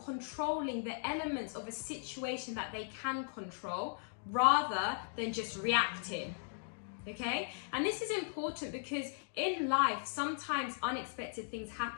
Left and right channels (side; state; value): right; silent; digital silence